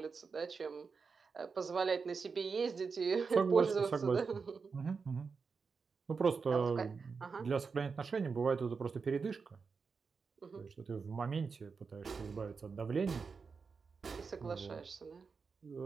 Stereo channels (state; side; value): quieter; left; 5.1 dB